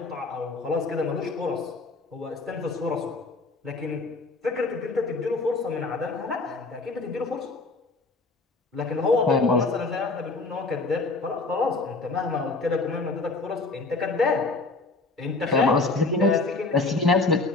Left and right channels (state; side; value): quieter; right; 3.6 dB